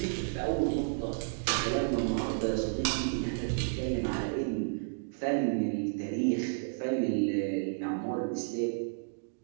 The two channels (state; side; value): silent; left; digital silence